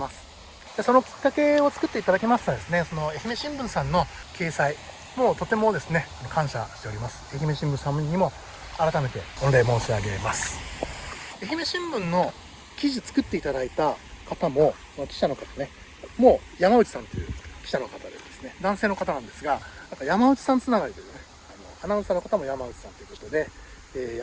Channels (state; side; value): identical; both; correlation 1.00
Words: す。でそのきっかけを作っていただきましたですね、その愛媛新聞さんの掲載もうとてもですね感謝しております。愛媛新聞さんにも改めて御礼申し上げます。愛媛新聞の記事作っていただいた方も記者の方ねもう山内さんという記者の方でですね男性の方なんですが、なんか山内さんつながりというねアナウンサーの方も山内さんということで、